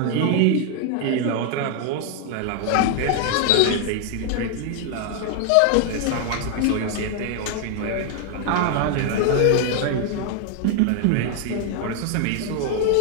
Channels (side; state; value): both; different; correlation 0.00